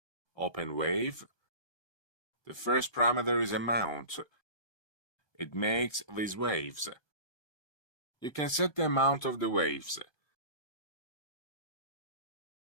Open wave. The first parameter is amount. It makes these waves. You can set the amount of the waves.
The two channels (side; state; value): right; late; 1.2 ms